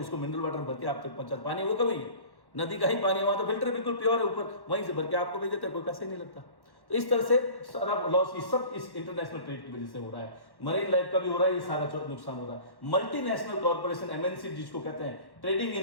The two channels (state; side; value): late; right; 1.1 ms